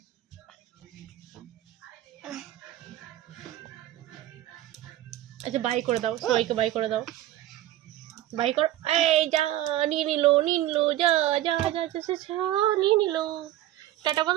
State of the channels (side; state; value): left; quieter; 14.2 dB